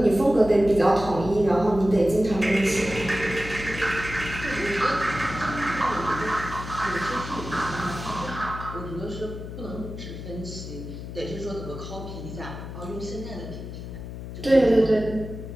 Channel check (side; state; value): left; noise; hum, 10 dB below the sound